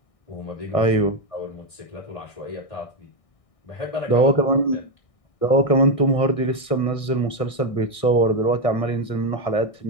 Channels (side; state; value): right; late; 1.6 ms